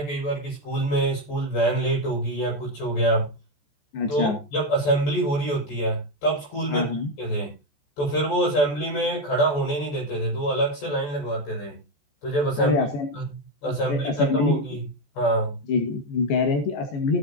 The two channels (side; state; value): right; late; 14 ms